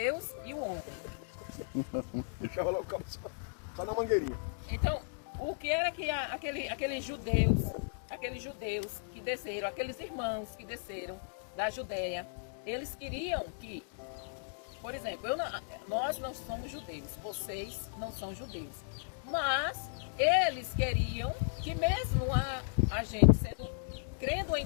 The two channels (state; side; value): silent; right; digital silence